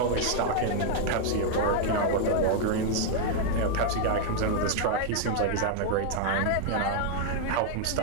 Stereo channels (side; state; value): both; different; correlation 0.00